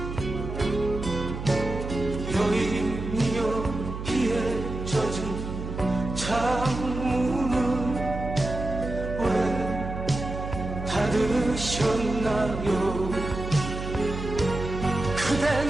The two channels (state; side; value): noise; right; hum, 7 dB below the sound